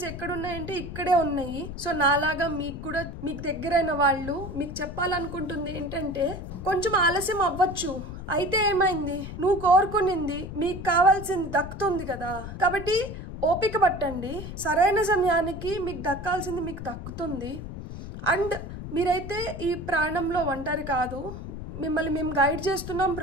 ఎక్కడున్నాయంటే ఇక్కడే ఉన్నాయి. సో నాలాగా మీకు దగ్గరైన వాళ్ళు మీకు చెప్పాలనుకుంటుంది ఏంటంటే కొంచెం ఆలస్యం అవ్వచ్చు, అయితే ఏమైంది, నువ్వు కోరుకునింది మీకు కావాల్సింది దక్కుతుంది కదా. కాబట్టి ఓపిక పట్టండి. సరైన సమయానికి మీకు దక్కాల్సింది మీకు దక్కుతుంది. అండ్ మీరైతే ఈ ప్రాణంలో ఒంటరి కాదు. మిమ్మల్ని మేము గైడ్ చేస్తున్నాం,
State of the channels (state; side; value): noise; left; rumble, 9 dB below the sound